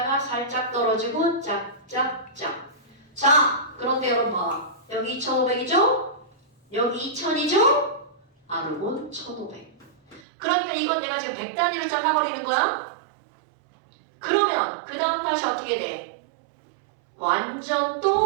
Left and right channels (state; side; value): drops out; left; at 10.2 s